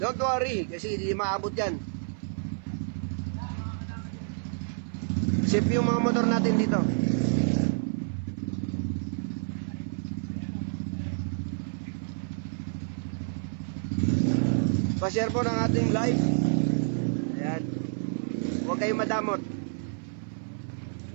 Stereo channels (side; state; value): left; silent; 59 dB below the other